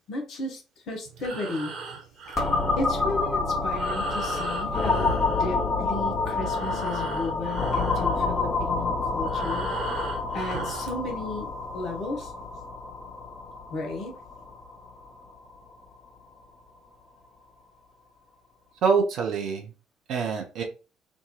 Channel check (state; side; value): normal; both; correlation 0.59